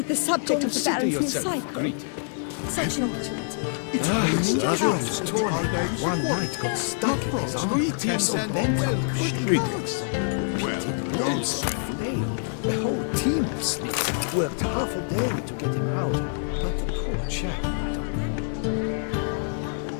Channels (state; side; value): silent; right; 59 dB below the other